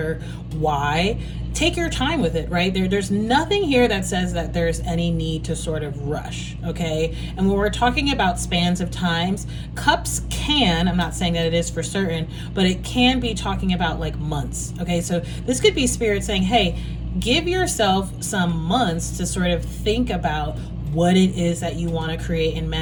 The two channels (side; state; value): both; identical; correlation 1.00